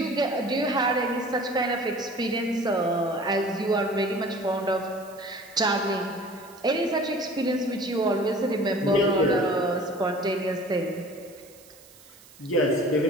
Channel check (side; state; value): right; noise; hiss, 23 dB below the sound